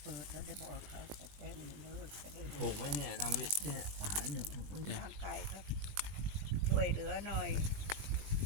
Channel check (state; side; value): late; left; 19 ms